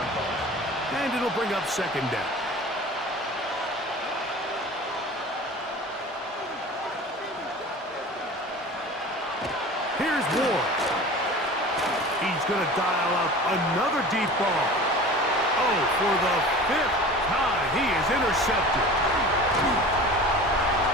And it'll bring up 2nd down. Here's Ward. He's going to dial up another deep ball. Oh, for the 5th time, he is intercepted.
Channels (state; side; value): normal; both; correlation 0.39